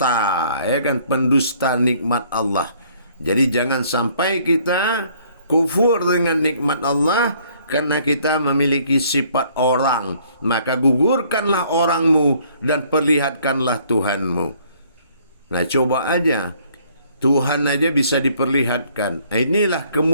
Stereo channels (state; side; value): inverted; both; correlation -0.62